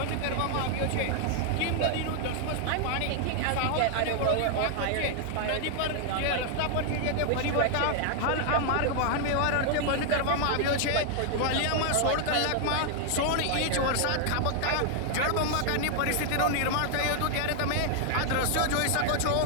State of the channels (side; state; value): both; different; correlation 0.00